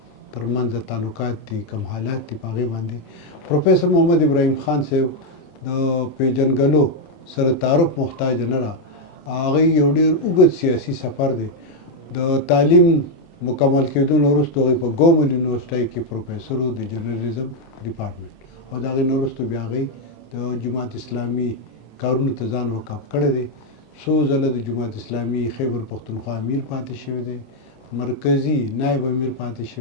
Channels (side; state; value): right; late; 27 ms